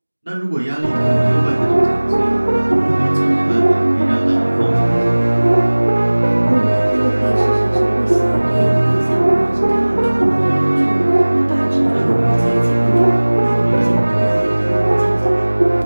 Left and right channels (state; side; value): inverted; both; correlation -1.00